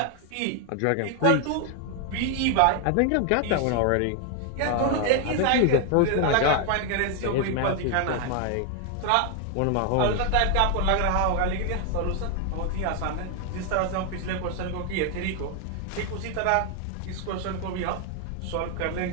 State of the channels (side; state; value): both; different; correlation 0.00